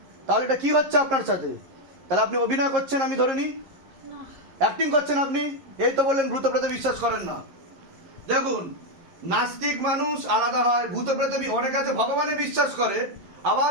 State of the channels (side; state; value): left; late; 11 ms